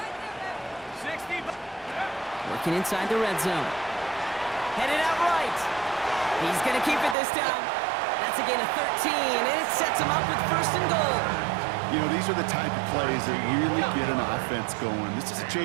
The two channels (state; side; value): drops out; left; at 7.2 s